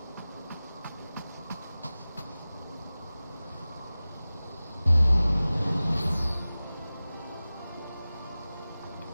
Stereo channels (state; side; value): inverted; both; correlation -0.97